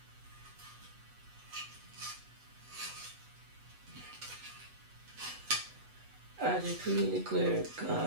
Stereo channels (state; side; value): late; left; 8.1 ms